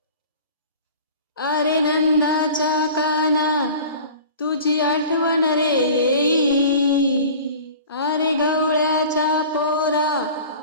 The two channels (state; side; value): inverted; both; correlation -0.42